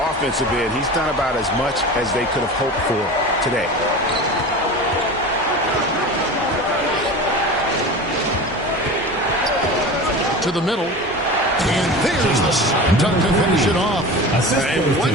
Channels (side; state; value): both; normal; correlation 0.32